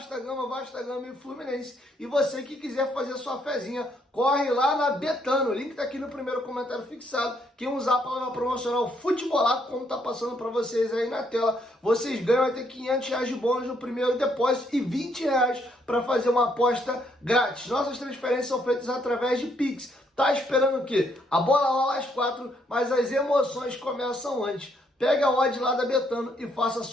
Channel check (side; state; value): both; normal; correlation 0.72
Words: Gama e Fluminense. E você que quiser fazer sua fezinha, corre lá na Betano. O link tá aqui no primeiro comentário fixado. Quem usar a palavra promocional Futebolaco, como tá passando para vocês aí na tela, vocês ganham até R$500 de bônus no primeiro depósito e R$20 para fazer uma aposta grátis. Nossas transferências são feitas através de Pix. Tá esperando o quê? A bola rola às 4, mas as emoções começam antes. Pega a odd lá da Betano e faça